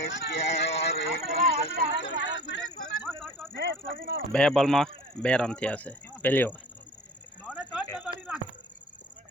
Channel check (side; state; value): both; normal; correlation 0.43